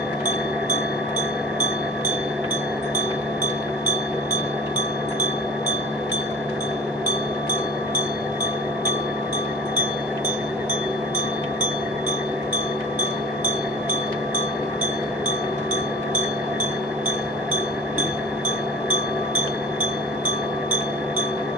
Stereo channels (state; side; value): normal; both; correlation 0.41